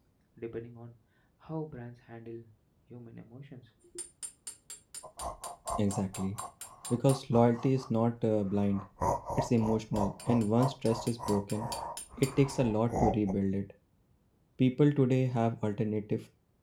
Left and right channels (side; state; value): both; identical; correlation 1.00